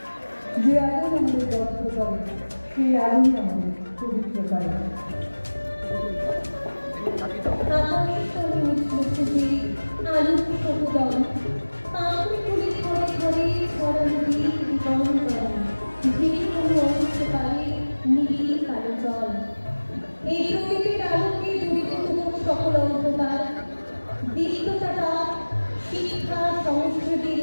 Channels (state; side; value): inverted; both; correlation -1.00